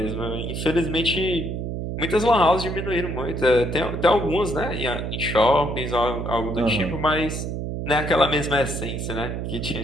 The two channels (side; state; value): right; noise; hum, 4 dB below the sound